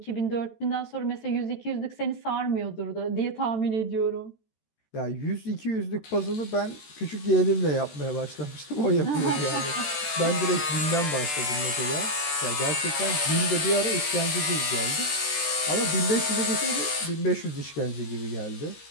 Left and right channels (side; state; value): right; late; 13 ms